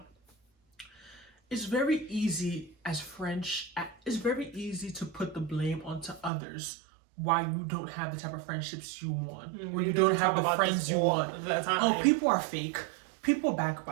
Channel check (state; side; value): drops out; left; at 6.3 s